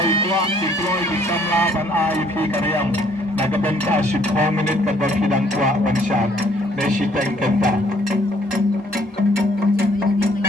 itu deploy di Samlapan IP Karyam. Nagabenta 10 minit kadang hidang kuat one shot. Nasi tank kenta.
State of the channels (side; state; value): both; normal; correlation 0.63